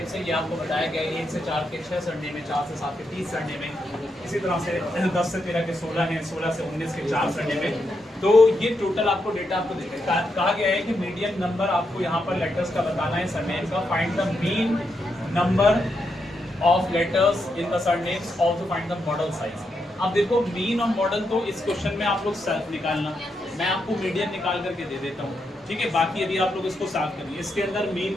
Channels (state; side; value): normal; both; correlation 0.83